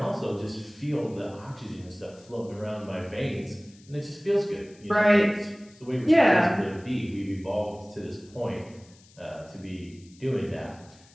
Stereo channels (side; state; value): left; noise; hiss, 27 dB below the sound